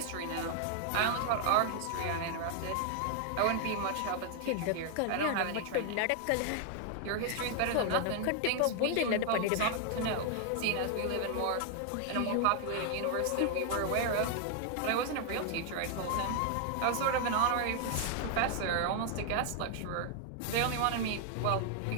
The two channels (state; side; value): different; both; correlation 0.00